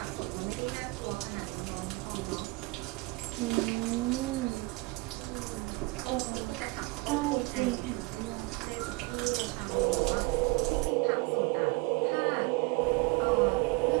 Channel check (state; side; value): quieter; left; 24.9 dB